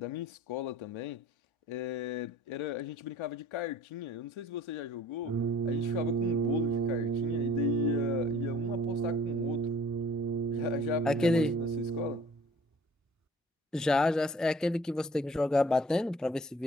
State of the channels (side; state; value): both; normal; correlation 0.52